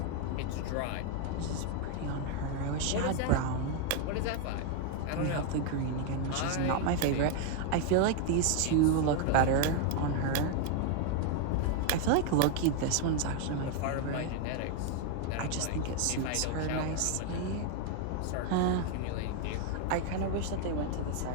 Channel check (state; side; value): different; both; correlation 0.01